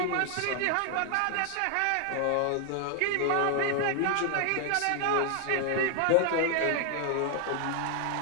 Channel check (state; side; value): different; both; correlation 0.00